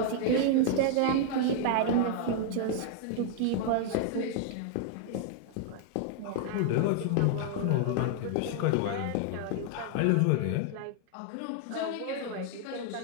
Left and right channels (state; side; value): different; both; correlation 0.00